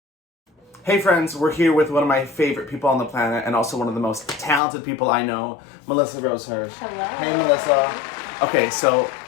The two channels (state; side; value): drops out; right; at 4.6 s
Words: Hey friends, we're here with one of my favorite people on the planet and also one of the most talented people I know, Melissa Rosehurst. Hello. Hey Melissa. Okay, so